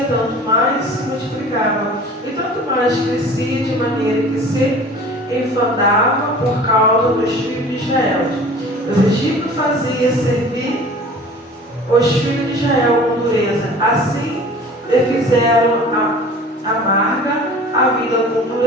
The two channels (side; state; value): both; normal; correlation 0.43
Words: tanto mais se multiplicava, e tanto mais crescia, de maneira que se enfadava por causa dos filhos de Israel. Os egípcios faziam servir os filhos de Israel com dureza. Assim lhe fizeram amarga a vida com